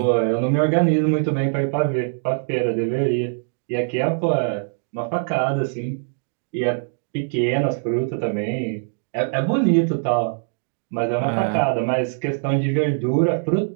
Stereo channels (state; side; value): silent; left; digital silence